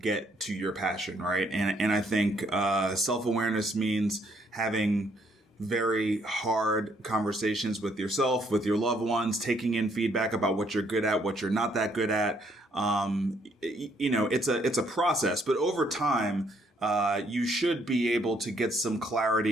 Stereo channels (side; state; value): both; normal; correlation 0.69